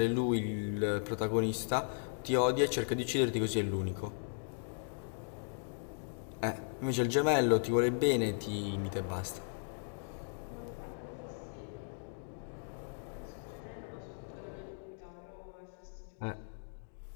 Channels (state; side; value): silent; right; digital silence